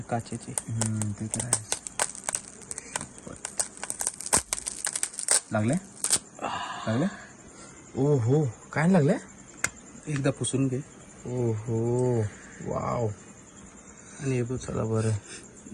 काचेची. ते तर आहे. लागले ओहो काय लागले. एकदा पुसून घे. ओहो वाव. आणि हे बघ चला बरं.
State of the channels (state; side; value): identical; both; correlation 1.00